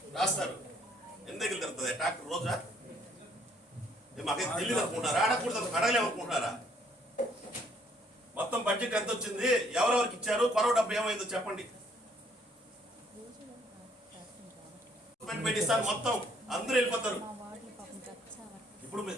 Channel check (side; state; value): both; normal; correlation 0.65